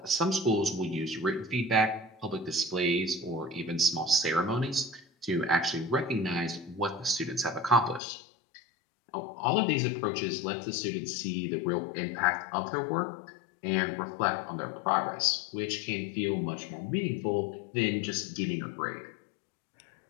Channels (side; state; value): right; drops out; at 8.0 s